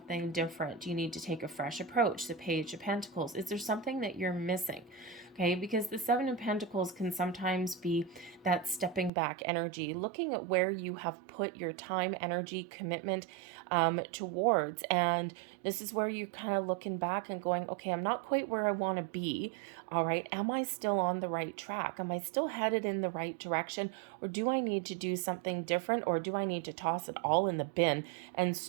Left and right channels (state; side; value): drops out; left; at 9.1 s